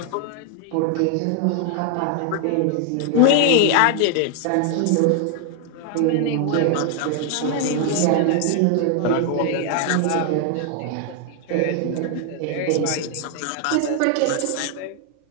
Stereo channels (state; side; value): different; both; correlation 0.00